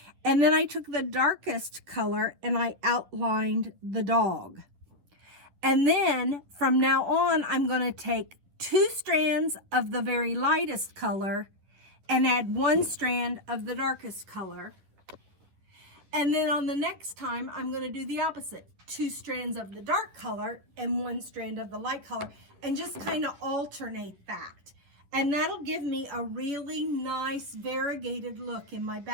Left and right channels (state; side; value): late; left; 11 ms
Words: And then I took the darkest color and I outlined the dog. And then from now on, I'm going to take 2 strands of the very lightest color and add 1 strand of the darkest color. And then on the next time, I'm going to do the opposite. 2 strands of the dark color and 1 strand of the light color, and just kind of alternate that. And that'll give me a really nice variegated look in my